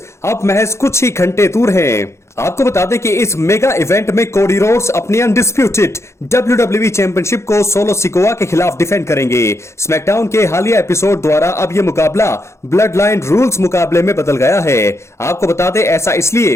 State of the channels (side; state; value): right; late; 0.13 ms